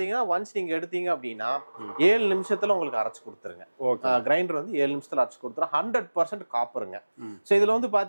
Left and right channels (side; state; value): both; inverted; correlation -1.00